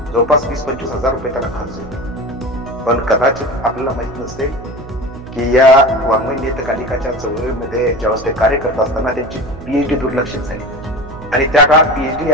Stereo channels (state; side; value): noise; right; hum, 15 dB below the sound